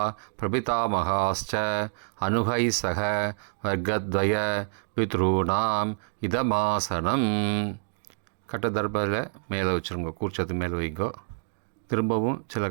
பிரபிதாமகாஸ்ச அனுகை சக வர்க்கத்வய பித்ருணாம் இதமாசனம். கட்டதர்பத்தில் மேலே வச்சுருங்க. கூர்ச்சத்து மேலே வைங்கோ. திரும்பவும் சில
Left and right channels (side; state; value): left; silent; 60 dB below the other